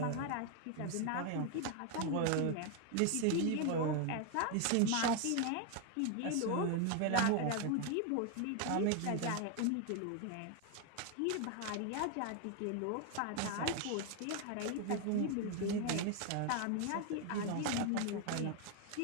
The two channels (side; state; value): both; different; correlation 0.01